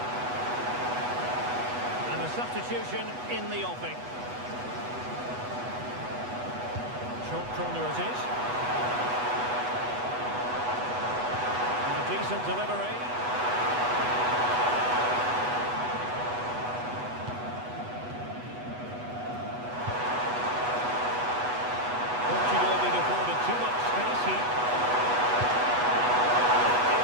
And a substitution in the offing. Short corner it is. Decent delivery. Portugal being afforded too much space here.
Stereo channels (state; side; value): late; left; 8.1 ms